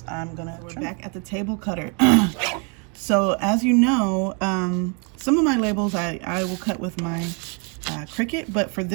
we're back at the table cutter. So as you know, some of my labels I will cut with my Cricut, but for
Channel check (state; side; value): quieter; left; 35.7 dB